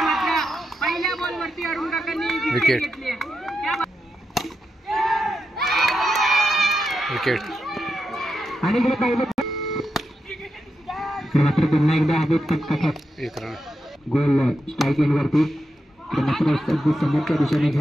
पहिल्या बॉल वरती अरुण काकांनी विकेट घेतली. विकेट आणि मात्र पुन्हा एकदा हवेत 1 रन गोल स्ट्राईक एंड वरती मात्र समोरच्या दिशेने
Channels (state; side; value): normal; both; correlation 0.87